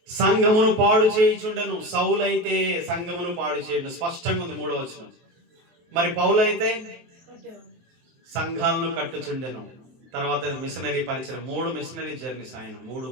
సంఘమును పాడు చేయుచుండెను. సౌలు అయితే సంఘమును పాడు చేయడం స్పష్టంగా ఉంది, 3వ వచనం. మరి పౌలు అయితే సంఘాలను కట్టుచుండెను. తర్వాత మిషనరీ పరిచయం, 3 మిషనరీ జర్నీస్, ఆయన 3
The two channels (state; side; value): late; left; 23 ms